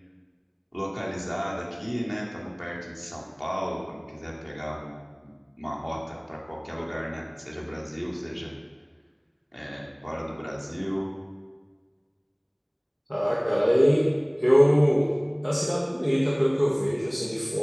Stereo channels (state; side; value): identical; both; correlation 1.00